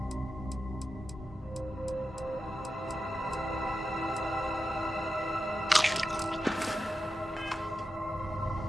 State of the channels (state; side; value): normal; both; correlation 0.90